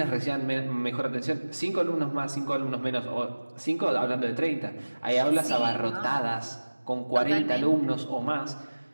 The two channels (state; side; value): inverted; both; correlation -1.00